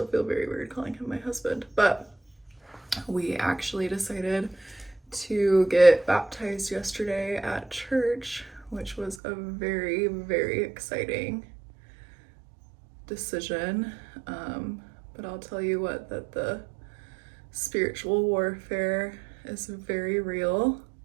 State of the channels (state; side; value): drops out; left; at 9.2 s